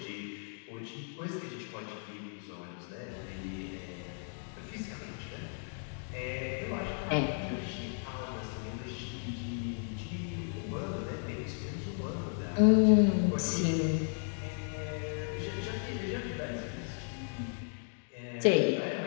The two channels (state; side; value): silent; right; 55 dB below the other